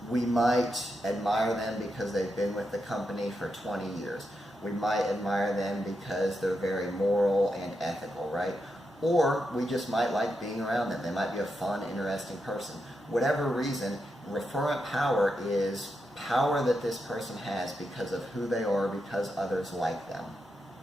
we might admire them because they've been with the company for 20 years. We might admire them because they're very moral and ethical, right? Or we just might like being around them. They might be a fun, interesting person. Whatever reason, referent power is power that this person has because of who they are, because others like them.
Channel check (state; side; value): normal; both; correlation 0.85